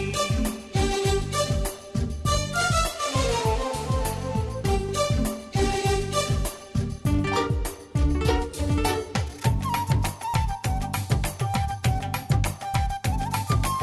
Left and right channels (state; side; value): identical; both; correlation 1.00